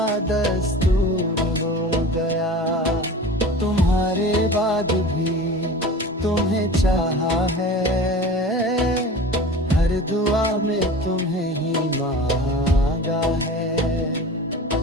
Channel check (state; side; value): normal; both; correlation 0.37